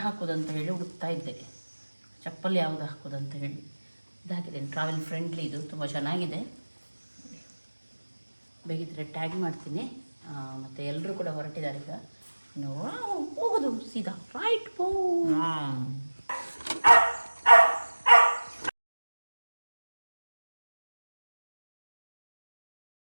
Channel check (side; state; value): both; inverted; correlation -1.00